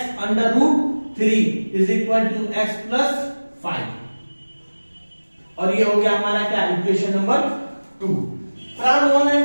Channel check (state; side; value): inverted; both; correlation -1.00